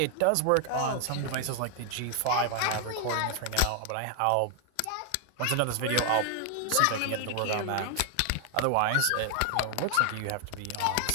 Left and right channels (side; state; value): both; different; correlation 0.00